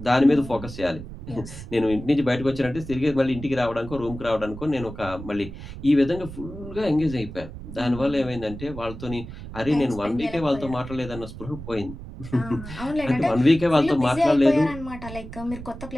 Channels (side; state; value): right; noise; rumble, 12 dB below the sound